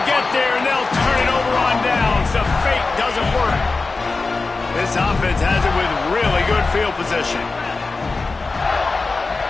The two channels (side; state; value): right; quieter; 3.8 dB